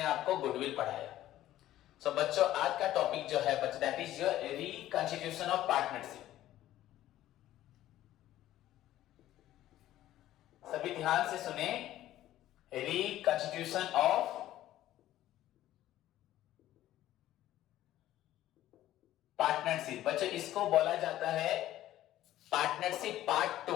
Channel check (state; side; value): quieter; right; 13.8 dB